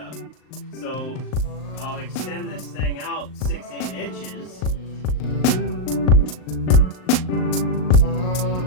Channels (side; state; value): right; late; 38 ms